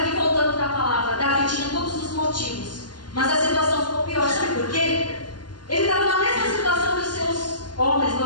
voltando para a palavra, Davi tinha todos os motivos, mas a situação ficou pior, sabe por quê? Ele estava na mesma situação que os seus homens,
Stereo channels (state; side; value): late; right; 0.71 ms